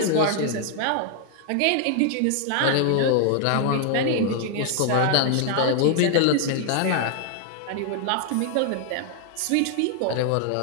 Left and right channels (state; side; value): different; both; correlation 0.00